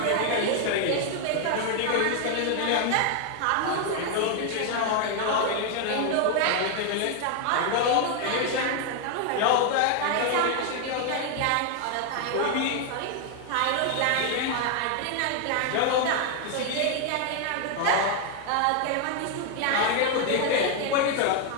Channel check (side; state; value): both; different; correlation 0.00